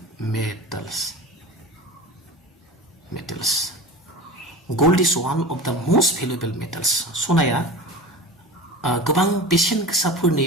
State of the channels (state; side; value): normal; both; correlation 0.33